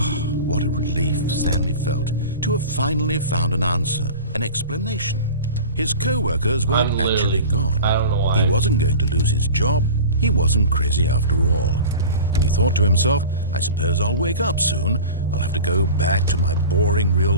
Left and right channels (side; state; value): both; inverted; correlation -0.36